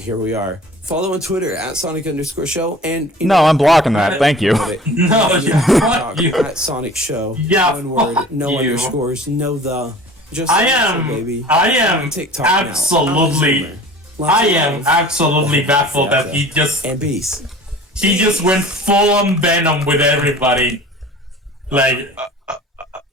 here we are. Follow on Twitter at Sonic_show, and No, I'm blocking that. Thank you. No, fuck you. At Sonic Show. Yeah, one word, fuck no you. underscores, no the. Just I Sonic Show, baby. am TikTok now. absolutely, I am absolutely baffled that he just went full on Venom with everybody. Like,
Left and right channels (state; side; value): normal; both; correlation 0.43